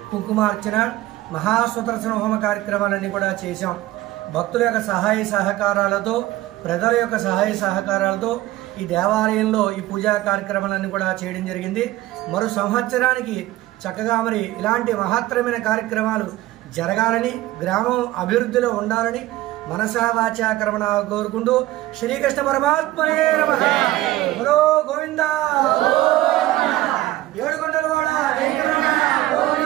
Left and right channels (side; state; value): left; quieter; 16.3 dB